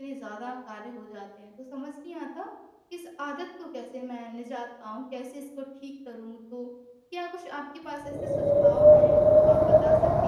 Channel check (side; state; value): both; identical; correlation 1.00